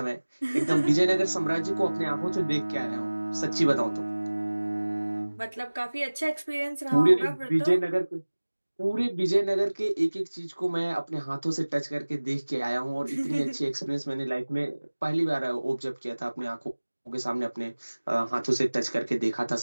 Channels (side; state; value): both; inverted; correlation -1.00